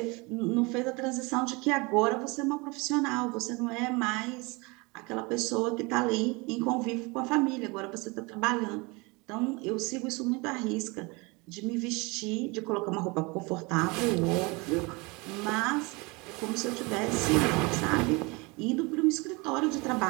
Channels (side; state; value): left; quieter; 26.9 dB